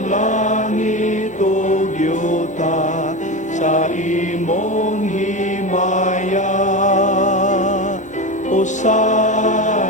langit ug yuta sa imong himaya.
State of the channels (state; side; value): normal; both; correlation 0.22